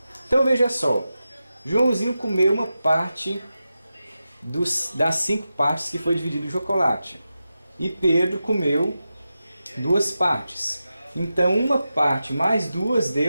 Então veja só, Joãozinho comeu uma parte das 5 partes que foi dividido o chocolate. E Pedro comeu 2 partes. Então uma parte mais 2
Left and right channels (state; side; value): inverted; both; correlation -0.91